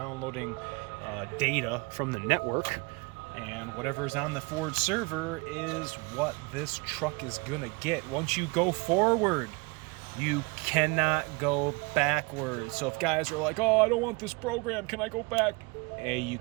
data from the network, and whatever's on the Ford server is what this truck is gonna get. Once you go forward, you cannot go backwards. So if guys are like, oh, I don't want this program, can I go back? you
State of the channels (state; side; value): quieter; left; 27.8 dB